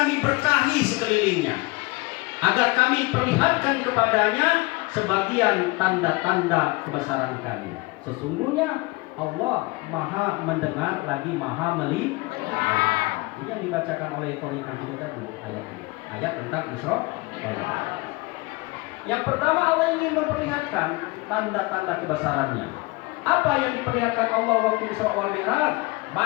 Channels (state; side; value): quieter; right; 24.5 dB